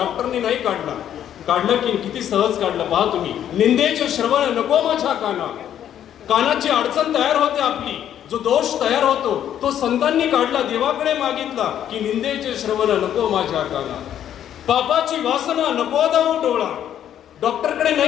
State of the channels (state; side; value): quieter; right; 10.4 dB